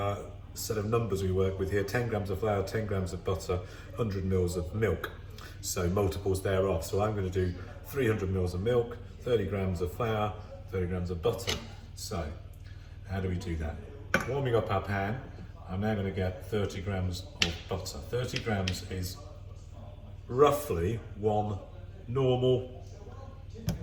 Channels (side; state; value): both; identical; correlation 1.00